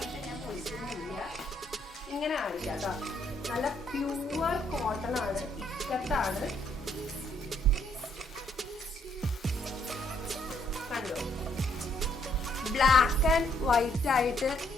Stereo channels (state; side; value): normal; both; correlation 0.69